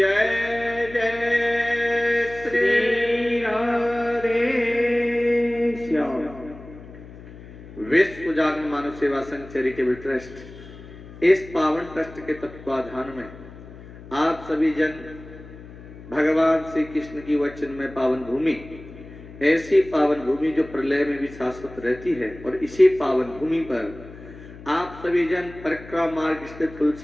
जय श्री राधे श्याम। विश्व जागरण मानव सेवा संघ चैरिटेबल ट्रस्ट इस पावन ट्रस्ट के तत्वाधान में आप सभी जन भगवान श्री कृष्ण की वचन में पावन भूमि, ऐसी पावन भूमि जो प्रलय में भी शाश्वत रहती है, और इसी पावन भूमि पर आप सभी जन परिक्रमा मार्ग स्थित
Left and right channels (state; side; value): noise; left; hum, 17 dB below the sound